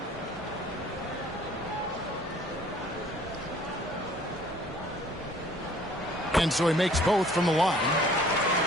And so he makes both from the line.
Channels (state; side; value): normal; both; correlation 0.54